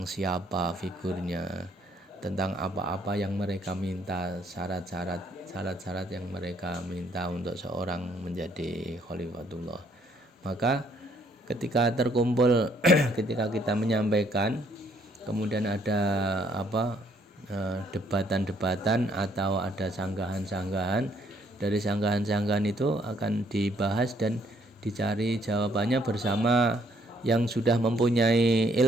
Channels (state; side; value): normal; both; correlation 0.67